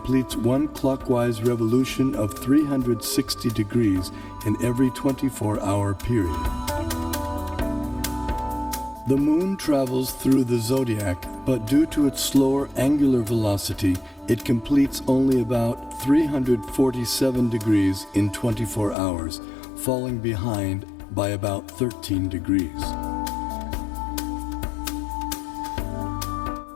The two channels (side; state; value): right; drops out; at 18.9 s